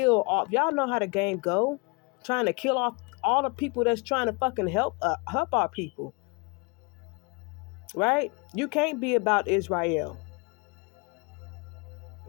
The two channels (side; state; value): right; quieter; 30.0 dB